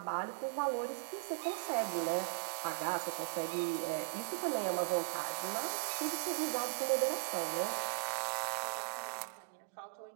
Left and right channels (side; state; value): left; silent; digital silence